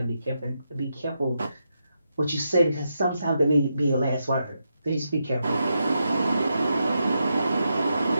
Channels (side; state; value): both; inverted; correlation -0.84